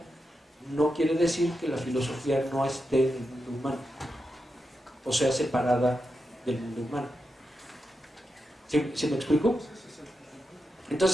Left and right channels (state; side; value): normal; both; correlation 0.88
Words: no quiere decir que la filosofía no esté en el mundo humano, o sea, separada del mundo humano. ¿Sí me explico?